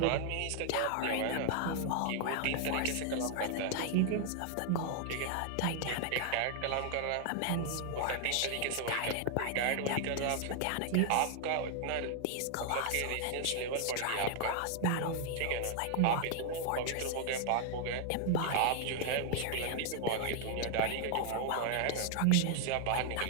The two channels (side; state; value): both; different; correlation 0.00